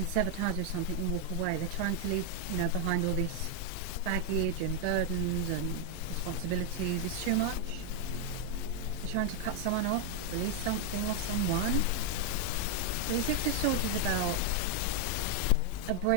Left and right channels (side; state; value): both; different; correlation 0.00